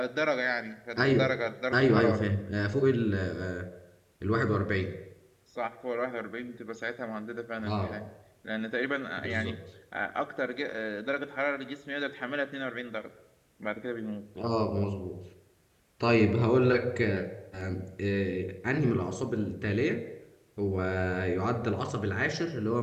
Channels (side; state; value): both; identical; correlation 1.00